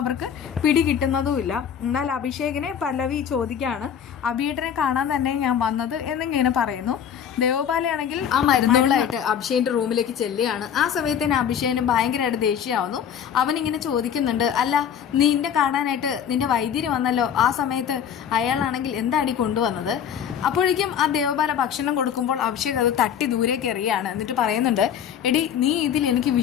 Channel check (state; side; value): quieter; right; 8.5 dB